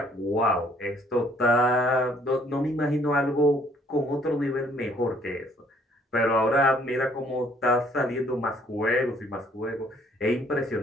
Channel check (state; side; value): normal; both; correlation 0.62